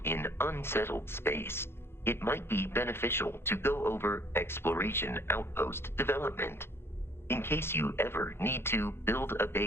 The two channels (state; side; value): late; right; 0.12 ms